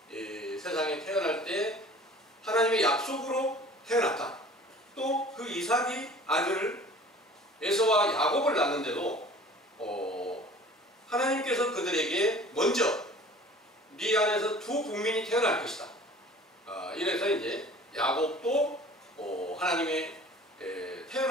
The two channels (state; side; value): normal; both; correlation 0.46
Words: 세상에 태어날 때 하나님의 약속으로 태어났다. 또 그 이삭이 아들 에서와 야곱을 낳는데도 하나님께서 그들에게 먼저 네 안에서 두 국민이 태어날 것이다. 이래서 이제 야곱도 하나님의